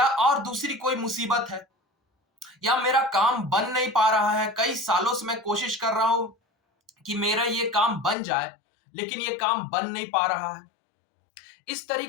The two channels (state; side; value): drops out; right; at 8.2 s